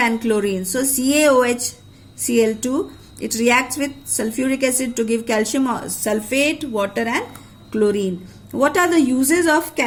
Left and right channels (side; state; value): both; identical; correlation 1.00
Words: chlorine. So CaOHCl2, it reacts with sulfuric acid to give calcium sulfate, water, and chlorine. What are the uses of